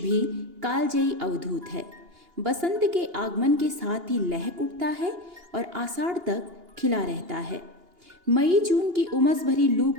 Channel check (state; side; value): late; left; 2.8 ms